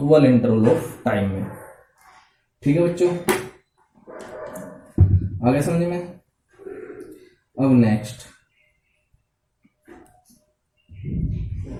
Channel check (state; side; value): identical; both; correlation 1.00